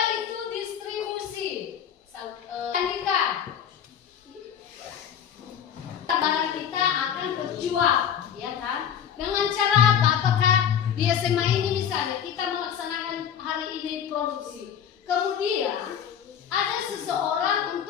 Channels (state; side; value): quieter; right; 8.8 dB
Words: itu distribusi? Andika, barang kita akan terjual, ya kan? Dengan cara apa? Apakah di SMA ini misalnya kita melaksanakan hari ini produksi, kemudian ada seseorang